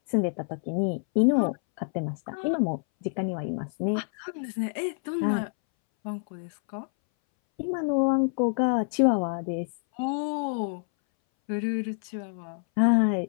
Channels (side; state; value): right; silent; 60 dB below the other